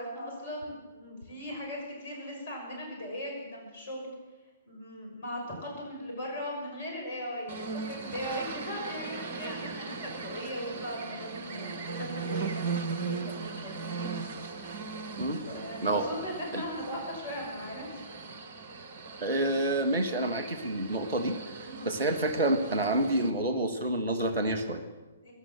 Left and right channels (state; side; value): inverted; both; correlation -0.40